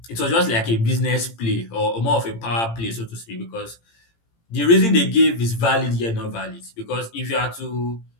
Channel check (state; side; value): late; right; 18 ms